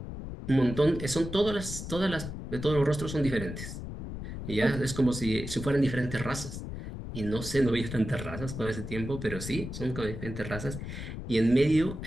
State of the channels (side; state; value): left; noise; rumble, 8 dB below the sound